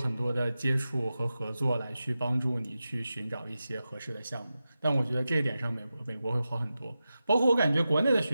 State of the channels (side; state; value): both; inverted; correlation -0.92